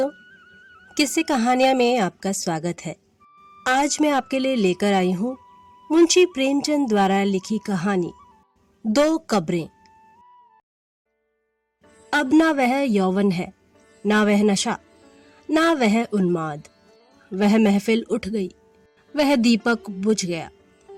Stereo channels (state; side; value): identical; both; correlation 1.00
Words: किस्से कहानियां में आपका स्वागत है। आज मैं आपके लिए लेकर आई हूँ मुंशी प्रेमचंद द्वारा लिखी कहानी दो कब्रें। अब ना वह यौवन है, ना वह नशा, ना वह उन्माद। वह महफिल उठ गई, वह दीपक बुझ गया